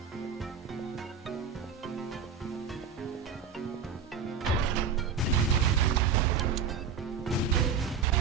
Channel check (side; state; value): left; quieter; 6.4 dB